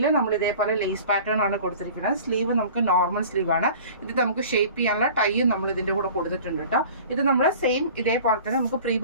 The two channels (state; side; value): inverted; both; correlation -0.43